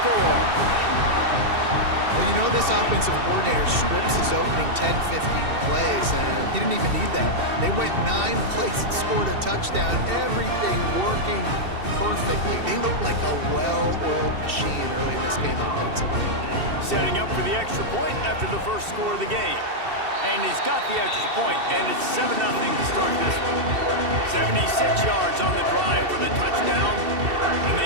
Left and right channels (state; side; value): late; left; 2.7 ms